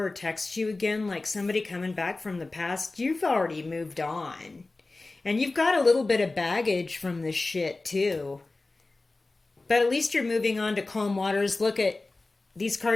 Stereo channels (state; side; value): quieter; right; 3.3 dB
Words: or text you again, like somebody coming back from the past, you've already moved on. And you've got a little bit of baggage from this shit too. But at least you're moving on to calm waters. Look at, these